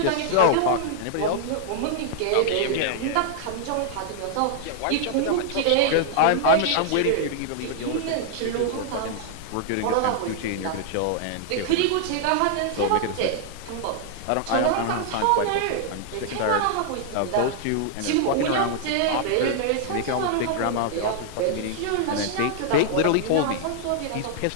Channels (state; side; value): different; both; correlation -0.01